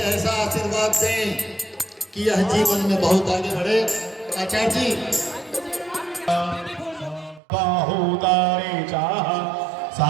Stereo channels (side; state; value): left; drops out; at 7.4 s